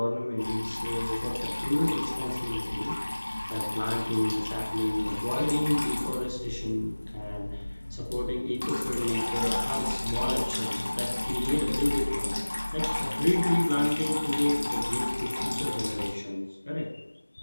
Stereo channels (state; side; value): inverted; both; correlation -1.00